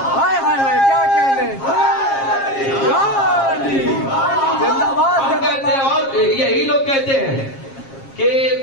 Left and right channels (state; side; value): late; right; 7.4 ms